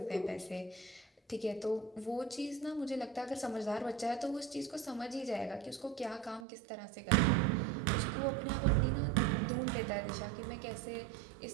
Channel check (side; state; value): left; drops out; at 6.4 s